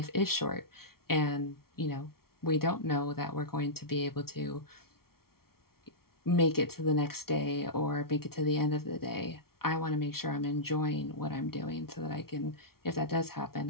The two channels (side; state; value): right; late; 0.94 ms